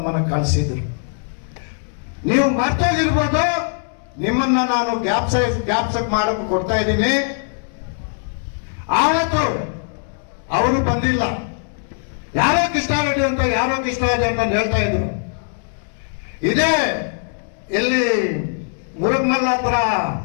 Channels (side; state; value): right; silent; digital silence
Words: ಕಳಿಸಿದ್ರು. ನೀವು ಮರ್ತೋಗಿರ್ಬೋದು, ನಿಮ್ಮನ್ನ ನಾನು ಜ್ಞಾಪಕ ಮಾಡಕ್ಕೆ ಕೊಡ್ತಾ ಇದ್ದೀನಿ. ಆವತ್ತು ಅವರು ಬಂದಿಲ್ಲ. ಯಾರೋ ಕೃಷ್ಣಾರೆಡ್ಡಿ ಅಂತ ಯಾರೋ ಕೃಷ್ಣಾರೆಡ್ಡಿ ಅಂತ ಹೇಳ್ತಾ ಇದ್ರು. ಇದೇ ಎಲ್ಲಿ ಮುರುಗಮಲ್ಲ ಹತ್ರ